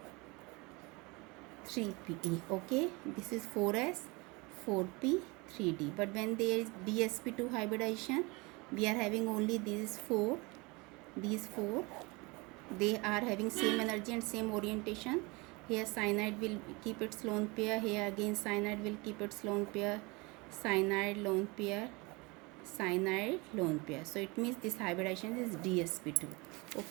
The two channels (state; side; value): quieter; left; 26.3 dB